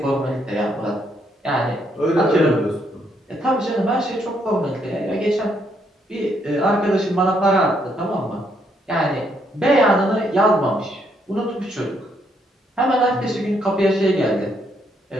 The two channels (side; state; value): both; normal; correlation 0.73